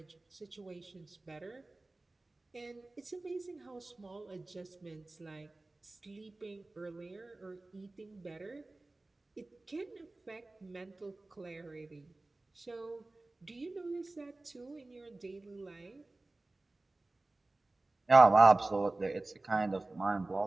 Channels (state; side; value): quieter; left; 3.0 dB